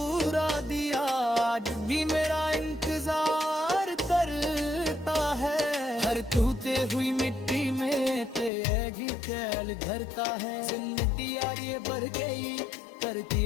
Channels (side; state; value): right; drops out; at 8.5 s